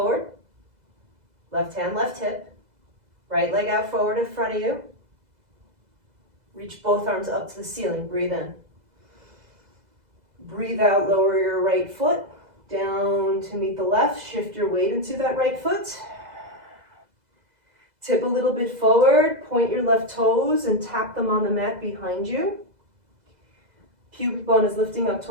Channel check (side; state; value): left; late; 2.0 ms